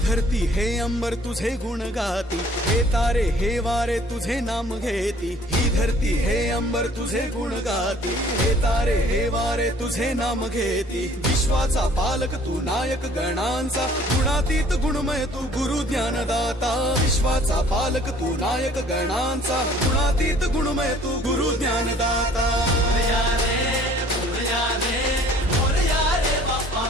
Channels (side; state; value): both; normal; correlation 0.55